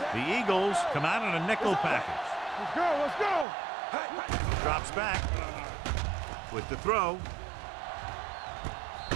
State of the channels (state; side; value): drops out; left; at 3.5 s